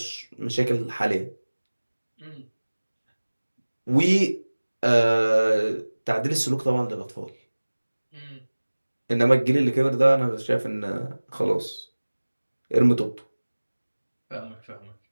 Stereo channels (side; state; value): both; inverted; correlation -1.00